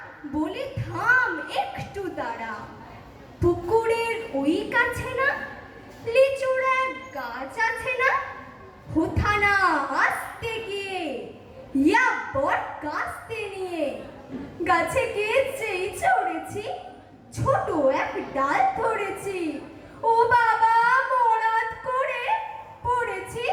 বলে থাম একটু তারা। পুকুরের ওই কাছে না লিচুর এক গাছ আছে না, হোথানা আসতে গিয়ে ইয়া বট কাস্তে নিয়ে গাছে গিয়ে যেই চড়েছি, ছোট এক ডাল ধরেছি। ও বাবা মরাদ করে পড়েছি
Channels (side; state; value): both; identical; correlation 1.00